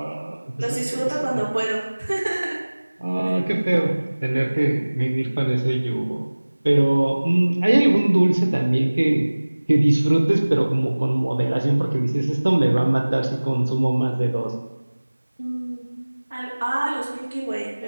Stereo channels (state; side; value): inverted; both; correlation -1.00